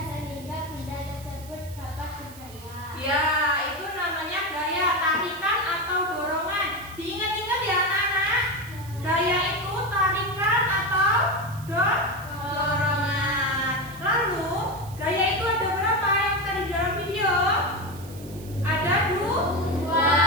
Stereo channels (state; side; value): noise; right; hiss, 19 dB below the sound